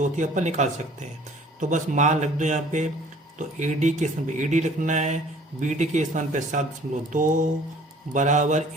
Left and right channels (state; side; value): normal; both; correlation 0.52